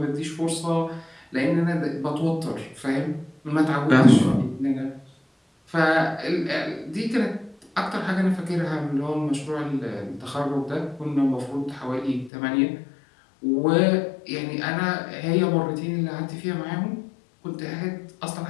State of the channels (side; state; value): right; drops out; at 12.3 s